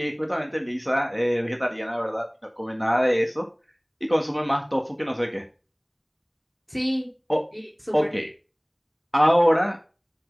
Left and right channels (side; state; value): both; identical; correlation 1.00